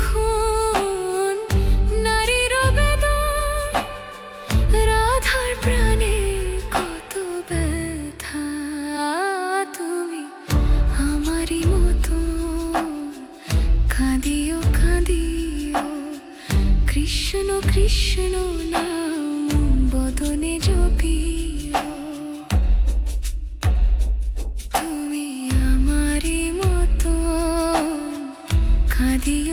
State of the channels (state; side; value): identical; both; correlation 1.00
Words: নারীর বেদন। রাধার প্রাণে কত ব্যথা, তুমি আমারই মতো কাঁদিও কাঁদিও। কৃষ্ণ কৃষ্ণ নাম বদনে জপিও। তুমি আমারই মতো